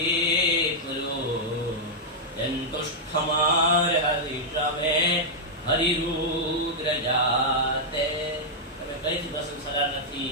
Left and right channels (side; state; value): both; normal; correlation -0.06